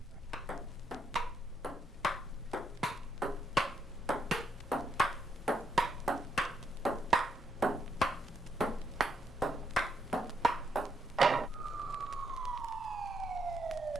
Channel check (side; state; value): both; normal; correlation 0.77